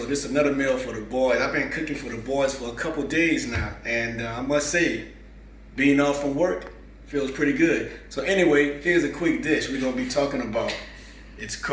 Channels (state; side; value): identical; both; correlation 1.00